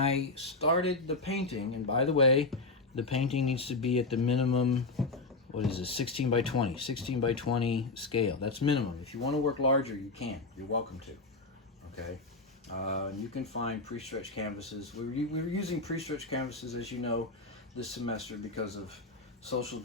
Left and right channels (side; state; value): right; quieter; 3.5 dB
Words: started the painting, and by the way, the painting needs to be at the minimum, 16 by 20, 16 by 20 scale. That's minimum. If you want to work larger, you can. You're welcome to, okay? You can find pre-stretched canvases. We were using pre-stretched canvases, as you know, this semester because of social